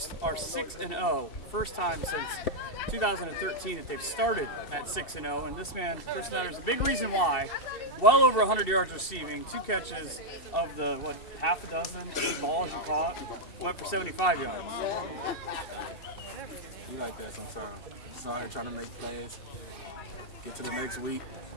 are 6-0. First time since 2013 that they've started at 6-0. And this man, Chris Nutter, is a big reason why. Well over 100 yards receiving, 2 catches of the, half a dozen, 8 balls you caught, went for 75 yards. You like that sometimes. Just out here trying to make plays, get to the next week,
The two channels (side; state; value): right; late; 2.7 ms